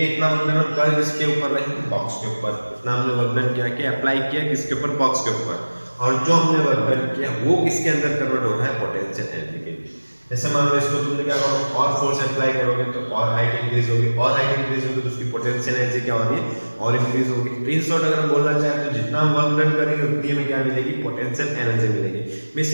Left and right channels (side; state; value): both; inverted; correlation -1.00